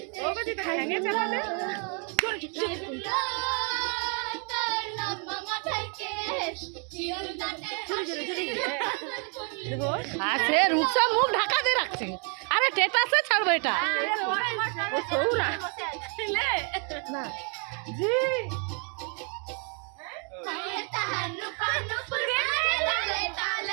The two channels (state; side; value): quieter; left; 38.2 dB